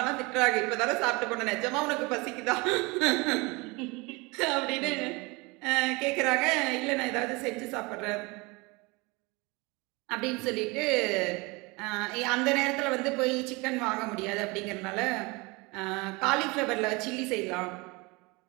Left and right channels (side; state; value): left; quieter; 25.9 dB